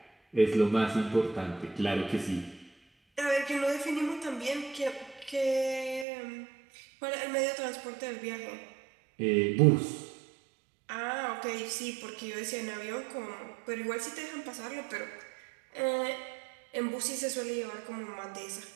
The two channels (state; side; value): drops out; left; at 6.1 s